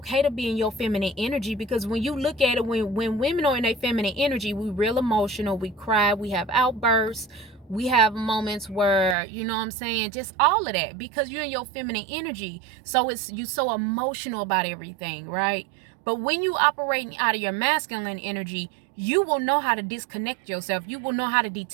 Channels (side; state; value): left; drops out; at 9.2 s